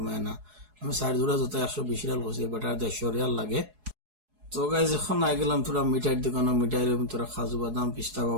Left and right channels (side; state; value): left; late; 4.7 ms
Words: না। আমি 4 জোড়া জুতা 120 রিয়াল করছি, বেটা 150 রিয়াল লাগে। তো গাই যখন আই গেলাম তোরা মিঠাইয়ের দোকানে মিঠাই লইম তোরা খাজু বাদাম পিস্তা